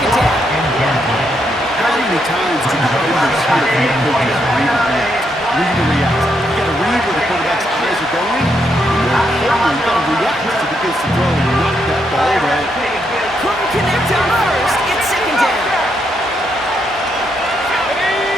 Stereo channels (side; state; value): both; normal; correlation 0.78